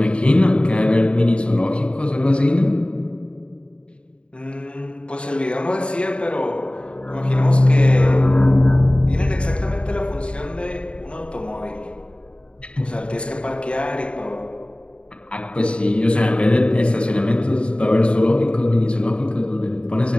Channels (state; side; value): late; right; 0.056 ms